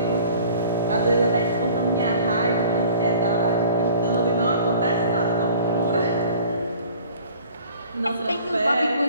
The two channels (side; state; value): both; inverted; correlation -0.48